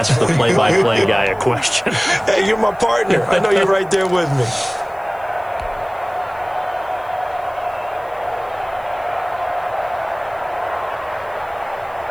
the play-by-play guy a question. Hey, you're my partner. I know you're right there with me.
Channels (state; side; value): noise; left; hiss, 29 dB below the sound